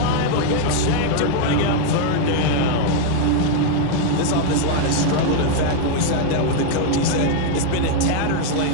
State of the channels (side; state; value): both; different; correlation 0.00